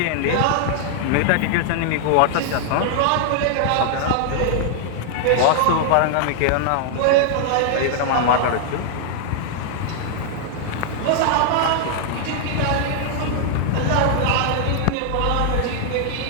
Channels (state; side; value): different; both; correlation -0.01